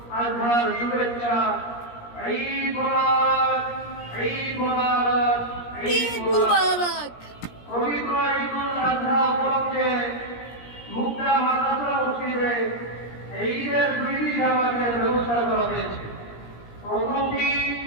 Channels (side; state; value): right; late; 17 ms